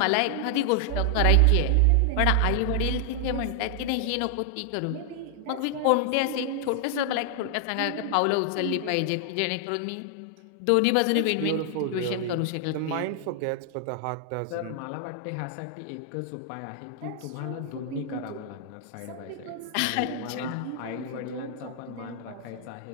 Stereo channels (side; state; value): both; different; correlation 0.00